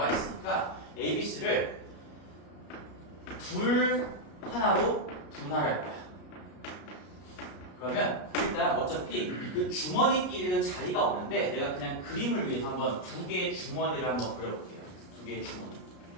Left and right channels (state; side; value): late; right; 33 ms